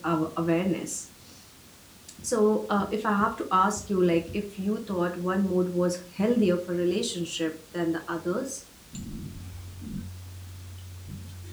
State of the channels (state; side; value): identical; both; correlation 1.00